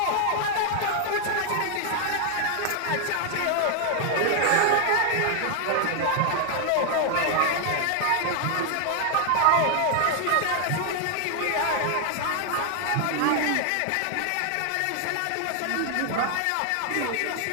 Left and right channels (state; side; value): different; both; correlation 0.00